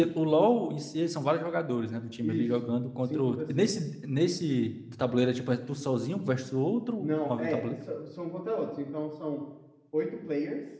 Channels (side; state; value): both; identical; correlation 1.00